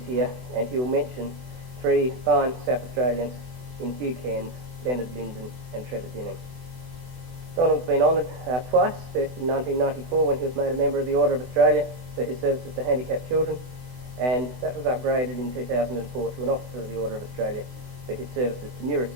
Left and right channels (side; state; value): left; late; 24 ms